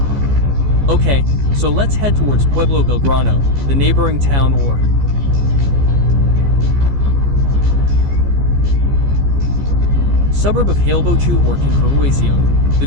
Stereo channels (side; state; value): left; late; 14 ms